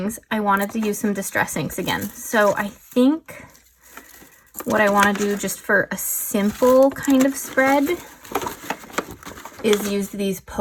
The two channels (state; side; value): identical; both; correlation 1.00